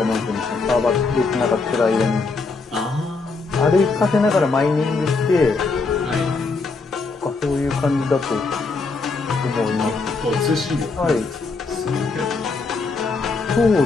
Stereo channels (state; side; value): quieter; right; 4.0 dB